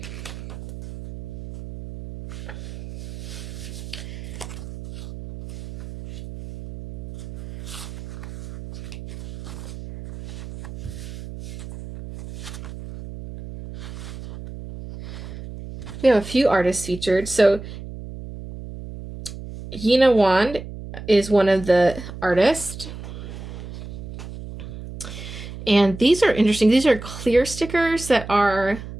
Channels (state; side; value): noise; right; hum, 11 dB below the sound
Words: We have a few artists featured. So Yina Wand is one of the artists. And these are interesting. These are clear stickers that are,